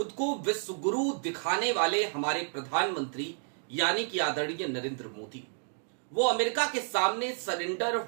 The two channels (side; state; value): left; silent; 57 dB below the other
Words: को विश्व गुरु दिखाने वाले हमारे प्रधानमंत्री यानी कि आदरणीय नरेंद्र मोदी वो अमेरिका के सामने सरेंडर